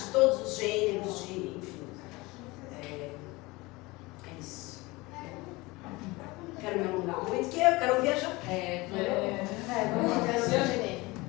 todos os gêneros, enfim. É isso. Quero me alongar muito, porque eu quero viajar.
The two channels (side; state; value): right; quieter; 22.6 dB